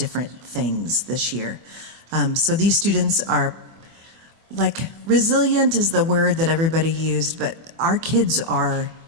things this year. So these students are, like, resilient is the word that everybody used, but our kids are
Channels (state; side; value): late; left; 24 ms